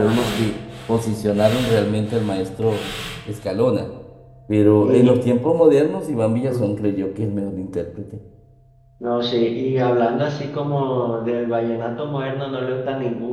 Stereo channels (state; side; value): identical; both; correlation 1.00